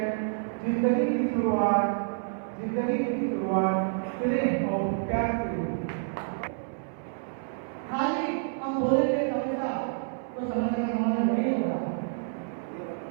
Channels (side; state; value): left; silent; 59 dB below the other